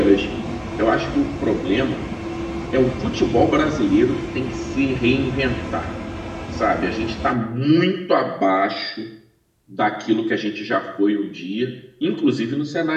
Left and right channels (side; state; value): both; identical; correlation 1.00